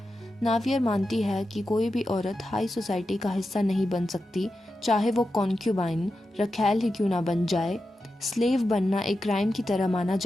नावियर मानती है कि कोई भी औरत हाई सोसाइटी का हिस्सा नहीं बन सकती, चाहे वो कॉन्क्यूबाइन रखैल ही क्यों ना बन जाए। स्लेव बनना एक क्राइम की तरह माना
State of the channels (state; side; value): normal; both; correlation 0.90